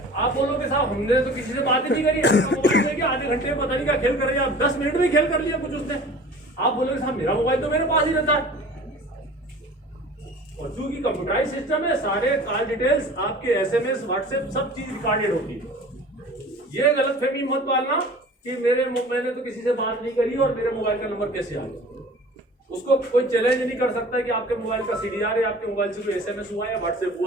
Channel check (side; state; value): both; normal; correlation 0.43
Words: आप बोलोगे साहब हमने तो किसी से बात ही नहीं करी, मोबाइल लेके आधे घंटे में पता नहीं क्या खेल कर रहे, आप 10 मिनट में खेल कर लिया कुछ उसने। आप बोलोगे साहब मेरा मोबाइल तो मेरे पास ही रहता है। और चूंकि कंप्यूटराइज सिस्टम है, सारे कॉल डिटेल्स आपके एसएमएस व्हाट्सएप सब चीज रिकॉर्डेड होती है। ये गलतफहमी मत पालना कि मैंने तो किसी से बात नहीं करी और मेरे मोबाइल का नंबर कैसे आ गया। उसको कोई चैलेंज नहीं कर सकता कि आपके मोबाइल का सीडीआर है, आपके मोबाइल से कोई एसएमएस हुआ या व्हाट्सएप